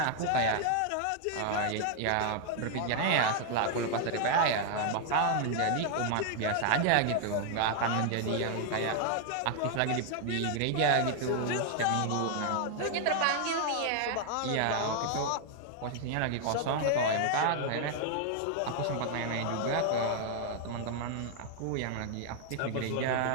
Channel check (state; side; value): different; both; correlation 0.00